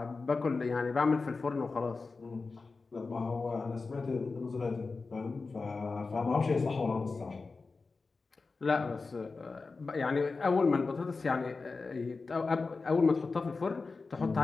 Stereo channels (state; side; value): quieter; right; 4.1 dB